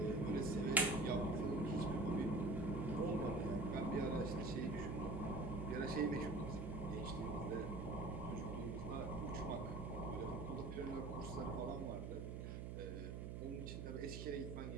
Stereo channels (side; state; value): right; noise; hum, 5 dB below the sound